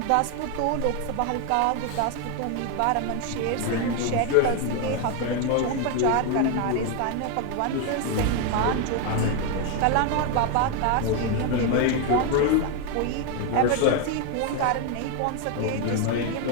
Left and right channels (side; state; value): both; different; correlation 0.01